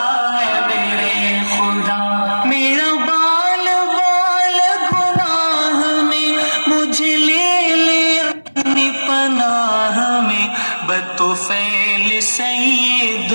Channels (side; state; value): both; inverted; correlation -1.00